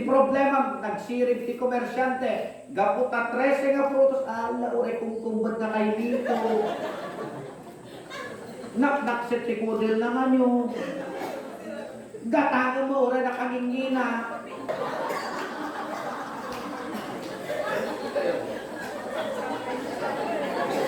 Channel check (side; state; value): both; identical; correlation 1.00